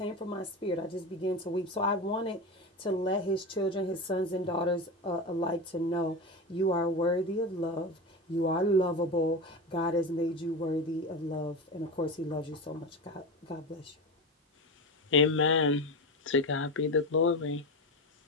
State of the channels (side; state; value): both; normal; correlation 0.22